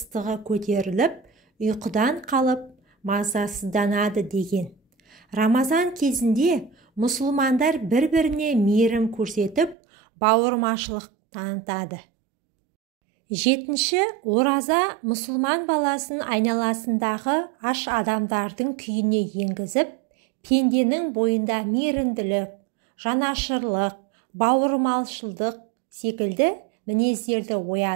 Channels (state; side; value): drops out; left; at 9.8 s